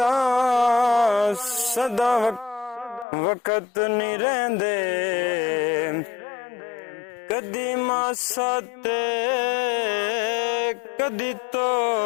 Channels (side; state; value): right; drops out; at 3.1 s